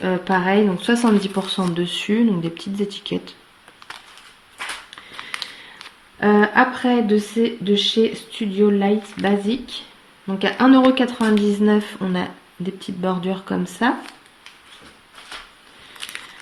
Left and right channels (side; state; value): both; identical; correlation 1.00